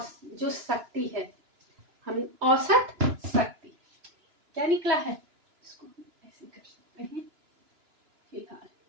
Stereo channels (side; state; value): left; late; 2.9 ms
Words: जो शक्ति है हम औसत शक्ति क्या निकला है इसको ऐसे कर सकते हैं। फिलहाल